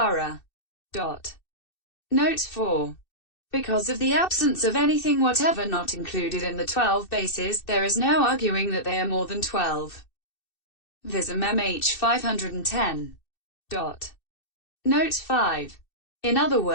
Note 4. Because of the absence of anything whatever not included in the 12 bases, there is no arguing that they are more than 12. Vism-mhþ 510. Note 5. In other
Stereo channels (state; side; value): late; right; 2.6 ms